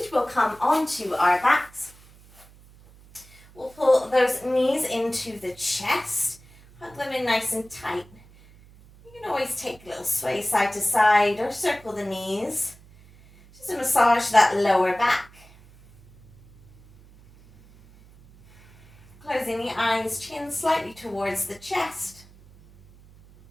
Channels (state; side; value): noise; right; hum, 25 dB below the sound